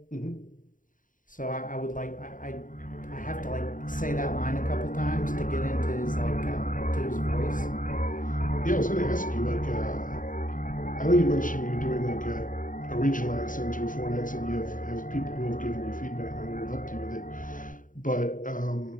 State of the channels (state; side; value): late; right; 0.39 ms